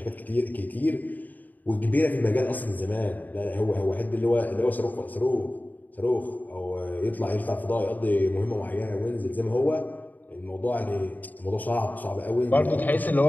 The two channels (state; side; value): late; right; 0.084 ms